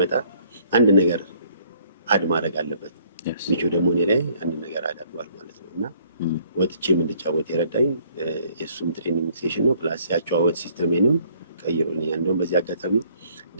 አንድ ነገር አድ ማድረግ አለበት። ሚቾ ደግሞ እኔ ላይ አንድ ነገር አዳርጓል ማለት ነው። እና ወጥቼም እንድጫወት የረዳኝ የእሱም ትሬኒንግ ሴሽን ነው። ፕላስ ያጨዋወት ሲስተሜንም ቀይሮልኛል። እንደውም በዚህ አጋጣሚ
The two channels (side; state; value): both; inverted; correlation -0.63